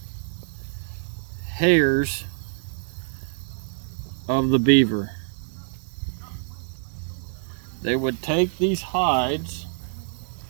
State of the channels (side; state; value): left; silent; 61 dB below the other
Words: hairs of the beaver. They would take these hides